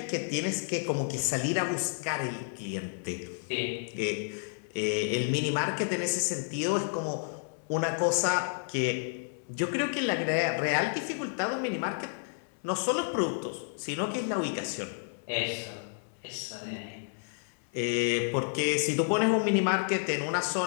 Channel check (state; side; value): silent; right; 57 dB below the other